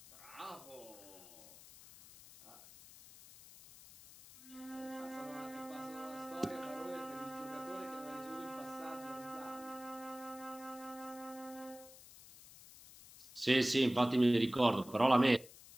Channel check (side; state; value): left; noise; hiss, 19 dB below the sound